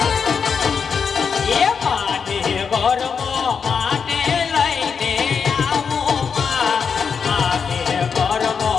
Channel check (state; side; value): quieter; right; 6.1 dB